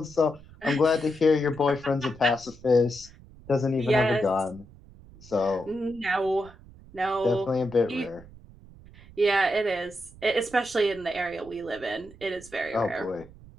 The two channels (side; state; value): right; noise; rumble, 21 dB below the sound